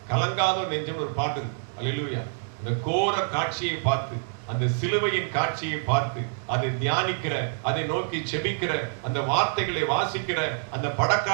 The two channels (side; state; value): left; silent; 60 dB below the other